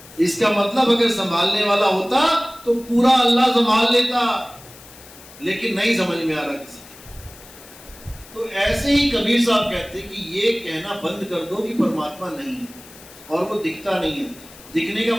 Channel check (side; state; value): left; noise; hiss, 20 dB below the sound